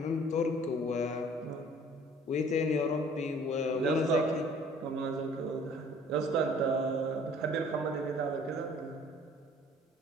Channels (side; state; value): both; normal; correlation 0.53